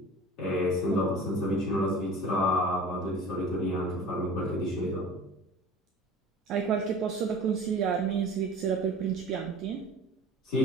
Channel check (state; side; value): normal; both; correlation 0.41